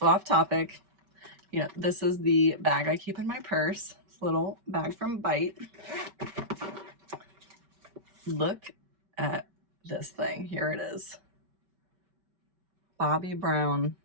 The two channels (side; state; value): left; late; 5.2 ms